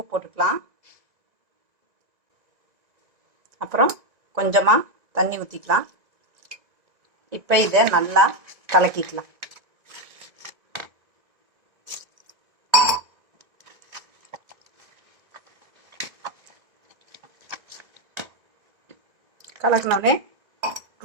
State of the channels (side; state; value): left; late; 1.9 ms